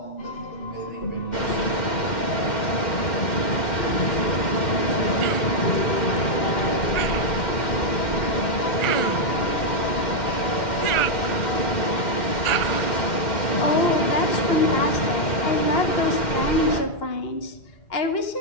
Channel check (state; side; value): late; right; 2.1 ms